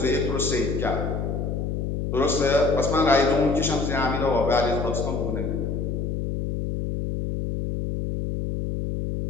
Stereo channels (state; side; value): noise; left; hum, 2 dB below the sound